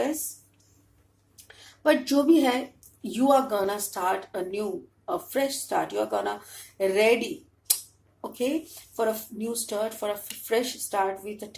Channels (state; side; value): identical; both; correlation 1.00